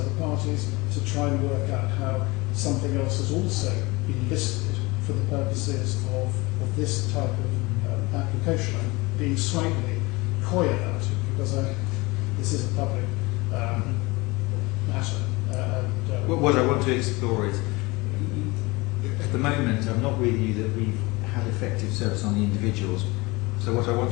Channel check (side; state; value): right; quieter; 23.8 dB